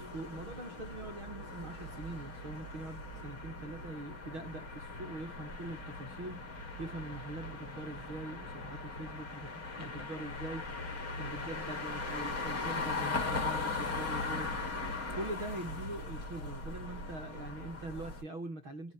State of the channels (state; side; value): late; left; 6.3 ms